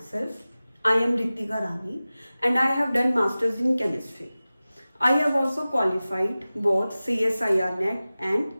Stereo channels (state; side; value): inverted; both; correlation -0.97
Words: I am Ritika Rani and I have done Masters in Chemistry. I have also qualified both CSIR NET and